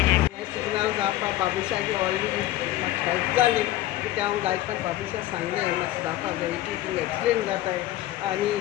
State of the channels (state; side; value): quieter; right; 15.1 dB